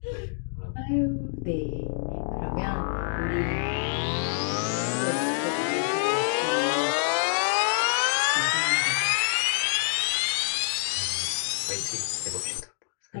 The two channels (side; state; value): right; silent; digital silence